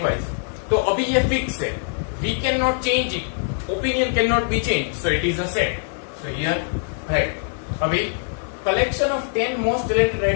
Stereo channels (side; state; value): right; silent; 64 dB below the other